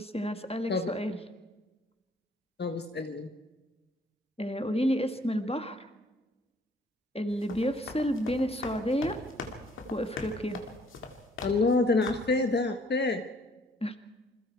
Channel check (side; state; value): both; normal; correlation 0.61